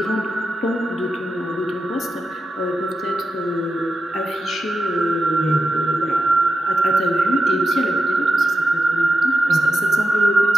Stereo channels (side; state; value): both; normal; correlation 0.90